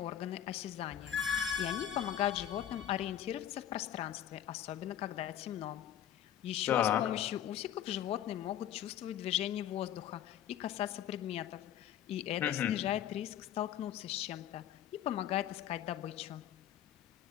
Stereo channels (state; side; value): quieter; right; 10.9 dB